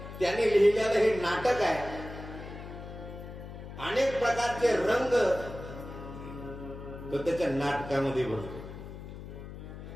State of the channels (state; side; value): noise; left; hum, 12 dB below the sound